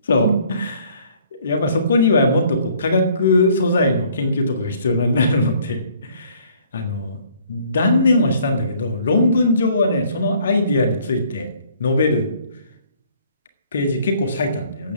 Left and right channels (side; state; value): both; inverted; correlation -0.60